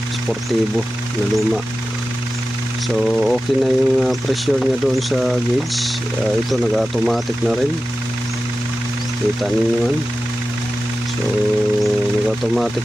Sportivo na luma. So okay na yung pressure niya doon sa gauge. Ito nag-automatic na rin, kita ninyo yan. So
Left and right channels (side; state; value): both; normal; correlation 0.94